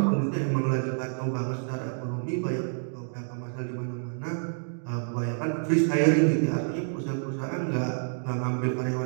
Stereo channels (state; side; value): silent; left; digital silence